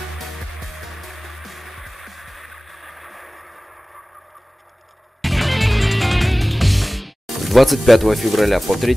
С 25 февраля по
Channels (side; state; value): both; normal; correlation 0.98